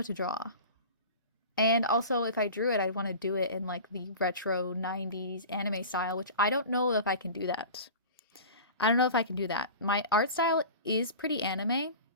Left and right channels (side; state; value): both; inverted; correlation -0.36